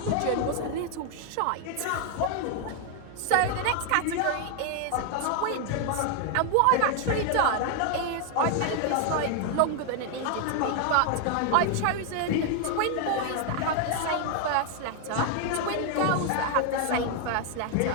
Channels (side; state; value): both; different; correlation 0.00